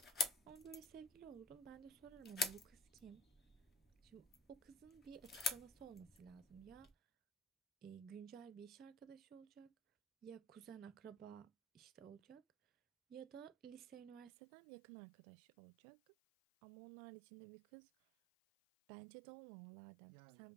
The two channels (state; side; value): drops out; left; at 14.3 s